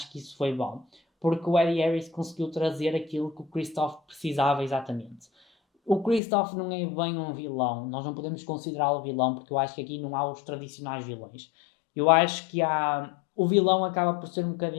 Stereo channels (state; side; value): drops out; right; at 6.2 s